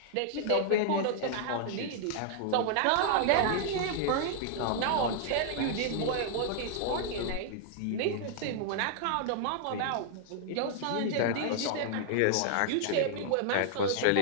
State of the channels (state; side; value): different; both; correlation -0.01